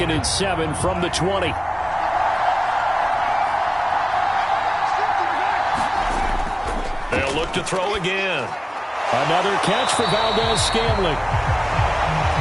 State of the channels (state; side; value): identical; both; correlation 1.00